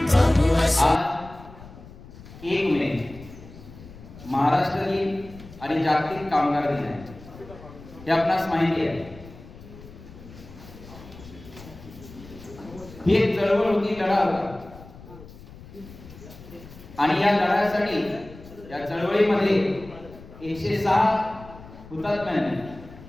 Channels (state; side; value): noise; left; rumble, 18 dB below the sound